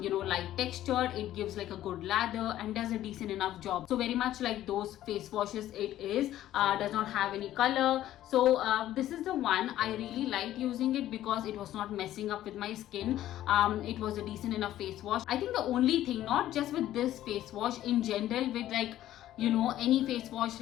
textured. It gives like a good lather and does a decent enough job. So very much like those face washes it is. Does not have any color. So this is the one. I really liked using it because it was not messing up with my skin. It was a decent enough face wash. I think the only thing, not just with this face wash, in general with like any face wash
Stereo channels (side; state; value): right; quieter; 13.2 dB